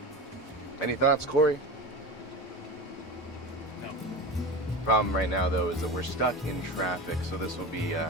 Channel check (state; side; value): normal; both; correlation 0.27